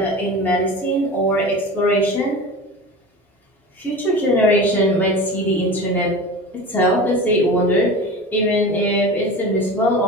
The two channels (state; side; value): normal; both; correlation 0.33